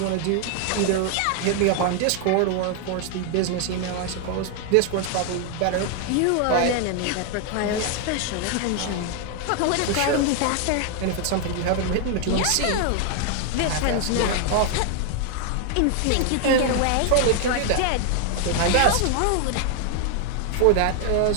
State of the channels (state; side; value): different; both; correlation 0.00